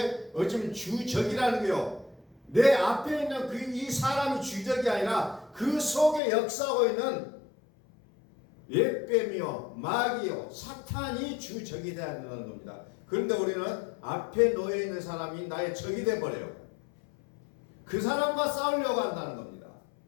어쩌면 주적이라는 거요. 내 앞에 있는 이 사람이 주적이 아니라 그 속에 역사하고 있는 옛뱀이요, 마귀요, 사탄이 주적이 되어야 된다는 겁니다. 그런데 우리는 앞에 놓여 있는 사람이 나의 적이 되어버려요. 그 사람과 싸우려고 한다는 겁니다.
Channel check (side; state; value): right; drops out; at 6.2 s